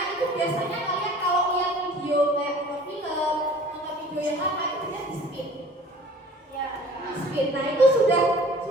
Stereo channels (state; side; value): normal; both; correlation 0.47